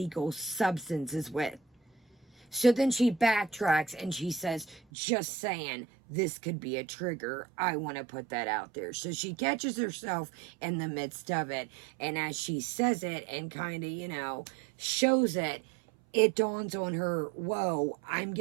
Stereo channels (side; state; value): left; drops out; at 4.8 s